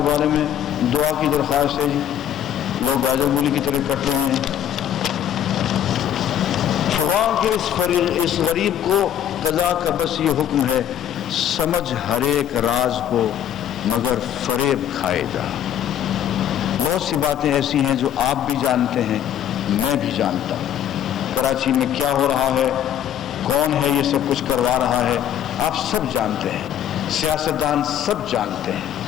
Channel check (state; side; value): quieter; right; 10.2 dB